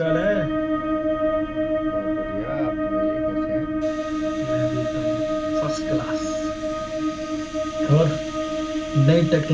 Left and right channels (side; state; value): both; identical; correlation 1.00